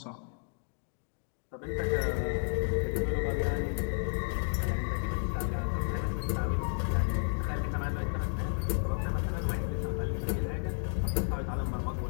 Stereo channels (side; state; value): right; silent; digital silence